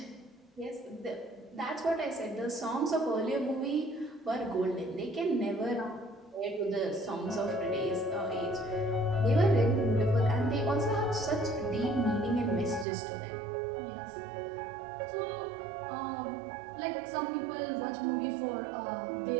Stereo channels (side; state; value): left; drops out; at 12.9 s